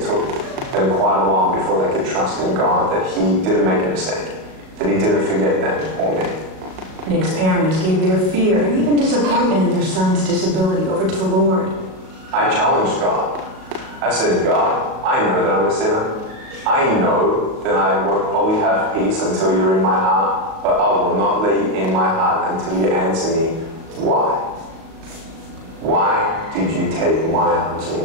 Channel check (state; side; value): late; left; 37 ms